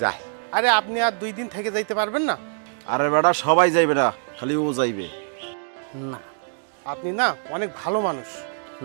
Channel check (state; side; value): silent; left; digital silence